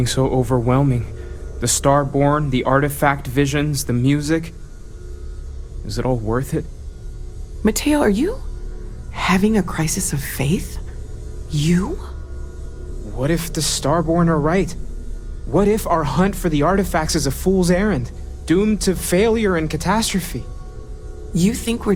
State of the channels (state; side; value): identical; both; correlation 1.00